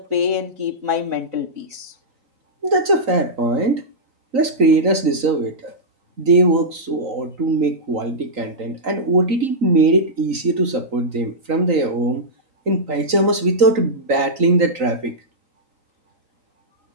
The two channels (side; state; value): left; late; 3.9 ms